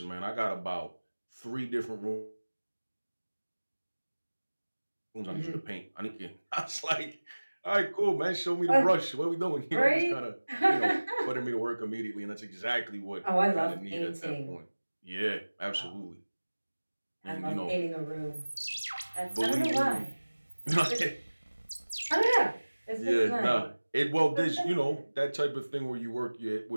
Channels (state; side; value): inverted; both; correlation -1.00